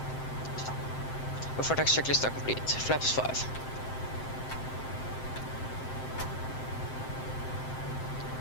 Before taxi checklist are complete. Flaps 5.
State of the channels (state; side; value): late; right; 7.7 ms